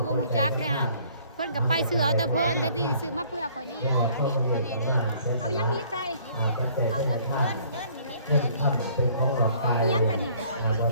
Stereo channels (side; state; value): both; inverted; correlation -0.58